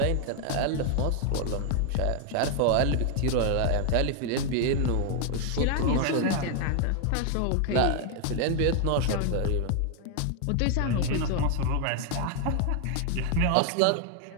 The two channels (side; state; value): both; different; correlation 0.01